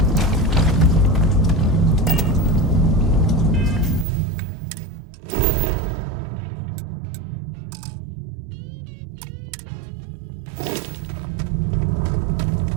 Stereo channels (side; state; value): left; drops out; at 4.0 s